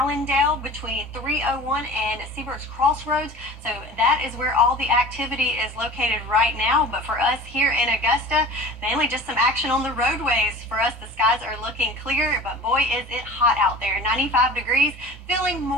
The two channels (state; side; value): normal; both; correlation 0.40